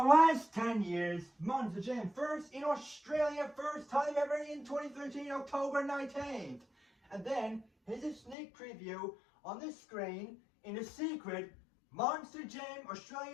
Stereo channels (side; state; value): right; drops out; at 8.3 s